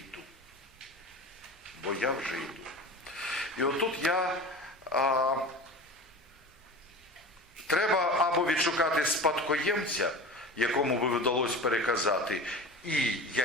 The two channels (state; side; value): normal; both; correlation 0.33